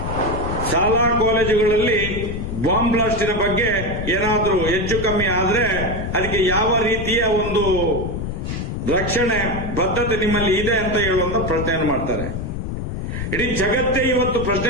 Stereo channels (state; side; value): noise; left; rumble, 5 dB below the sound